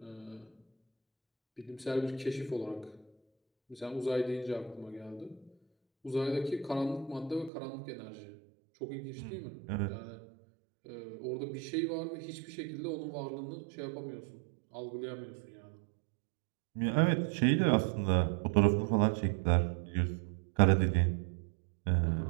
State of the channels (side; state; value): left; drops out; at 7.5 s